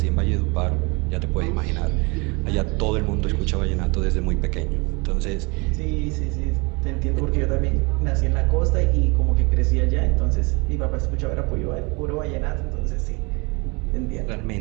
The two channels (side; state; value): left; quieter; 28.7 dB